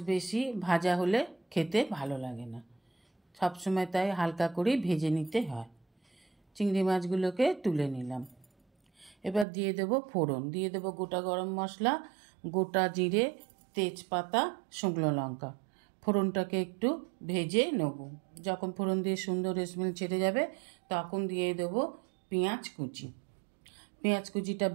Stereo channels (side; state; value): left; drops out; at 9.5 s